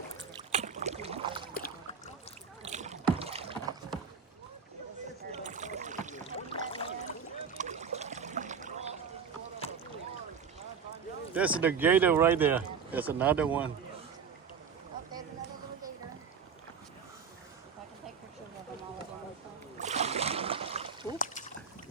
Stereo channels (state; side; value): quieter; left; 6.3 dB